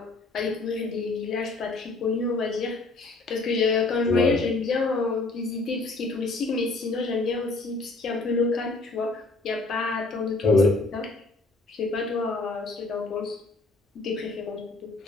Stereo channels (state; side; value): quieter; right; 3.4 dB